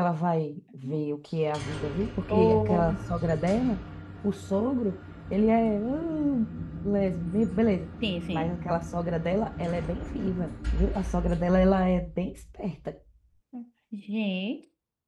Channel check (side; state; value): both; identical; correlation 1.00